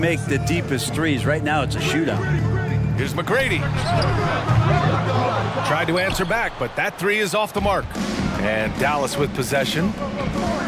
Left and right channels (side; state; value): both; identical; correlation 1.00